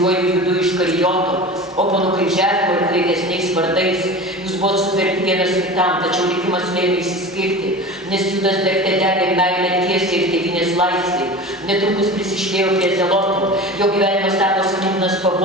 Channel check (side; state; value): both; normal; correlation 0.33